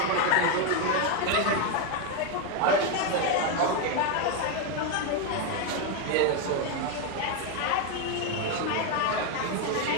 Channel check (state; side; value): different; both; correlation 0.02